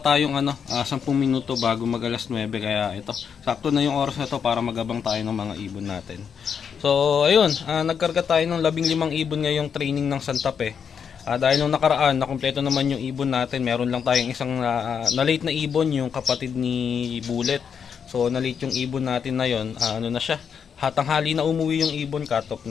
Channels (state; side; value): quieter; right; 7.1 dB